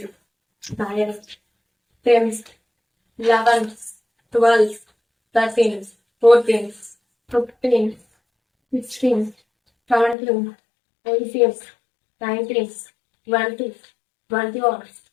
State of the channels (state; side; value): drops out; right; at 10.2 s